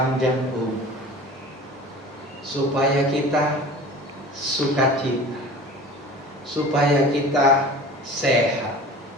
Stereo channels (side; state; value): both; normal; correlation 0.40